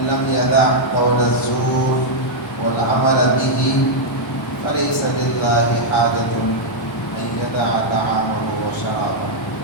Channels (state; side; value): normal; both; correlation -0.03